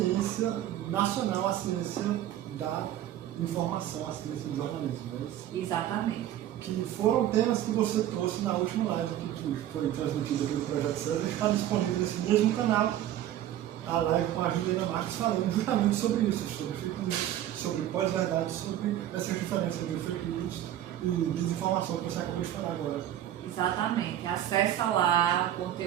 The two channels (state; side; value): quieter; left; 12.1 dB